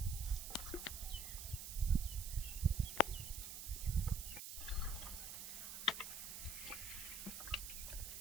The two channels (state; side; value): noise; right; hiss, 7 dB below the sound